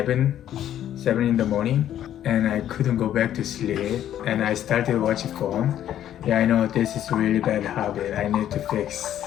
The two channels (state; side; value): quieter; right; 11.2 dB